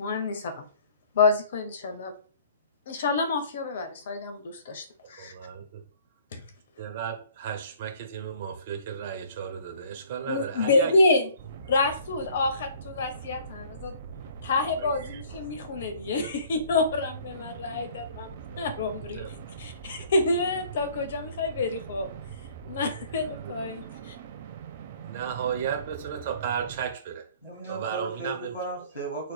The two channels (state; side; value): inverted; both; correlation -0.55